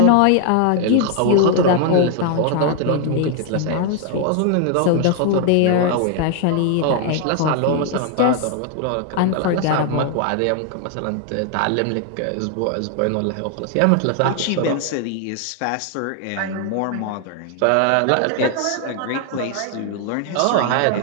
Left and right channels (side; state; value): both; different; correlation 0.00